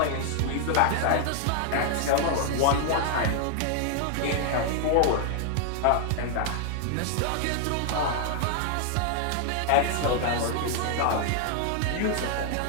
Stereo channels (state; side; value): different; both; correlation 0.00